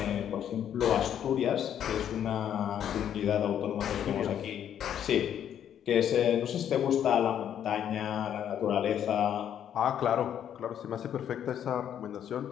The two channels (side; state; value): right; quieter; 9.7 dB